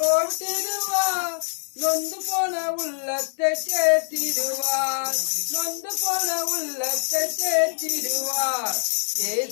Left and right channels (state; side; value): silent; right; 57 dB below the other